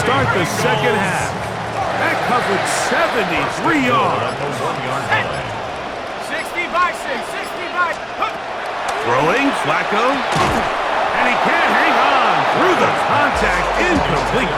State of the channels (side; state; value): both; identical; correlation 1.00